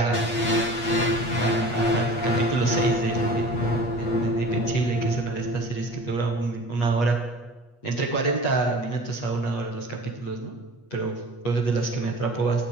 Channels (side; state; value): right; late; 8.3 ms